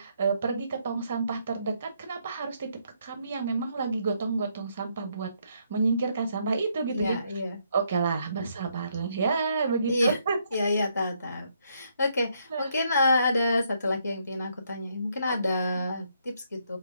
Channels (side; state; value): both; inverted; correlation -0.73